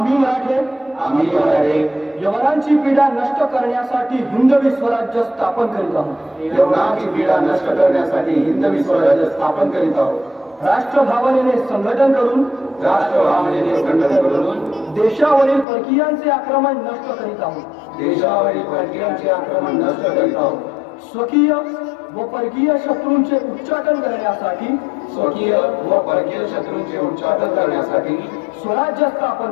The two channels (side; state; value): right; drops out; at 15.7 s